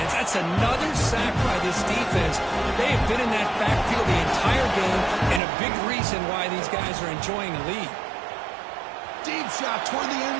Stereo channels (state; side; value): drops out; left; at 5.4 s